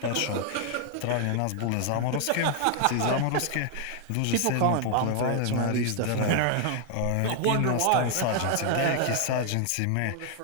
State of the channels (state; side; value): different; both; correlation 0.00